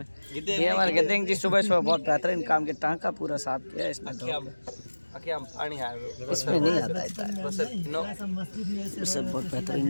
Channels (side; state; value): both; inverted; correlation -1.00